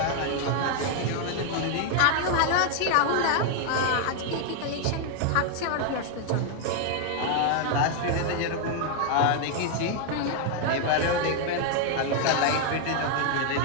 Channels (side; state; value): both; different; correlation 0.00